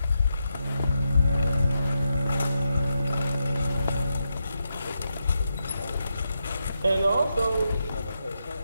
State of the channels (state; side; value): inverted; both; correlation -0.85